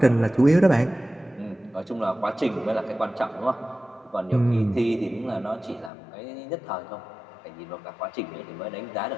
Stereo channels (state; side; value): drops out; right; at 5.9 s